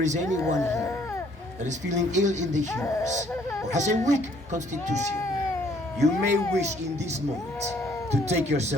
is anyone here that is feeling ill in the humors or has a weak constitution, you may wish in this moment to take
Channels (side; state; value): both; normal; correlation 0.63